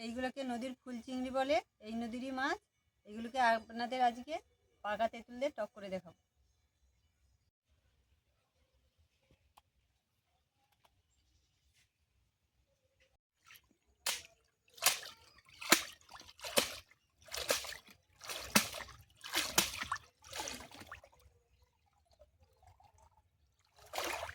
এইগুলোকে নদীর ফুল চিংড়ি বলে, এই নদীরই মাছ। এগুলোকে আপনাদের আজকে পাকা তেঁতুল দিয়ে টক করে দেখাবো।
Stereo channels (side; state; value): both; identical; correlation 1.00